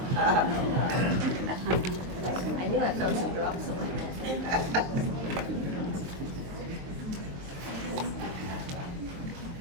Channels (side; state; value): left; late; 23 ms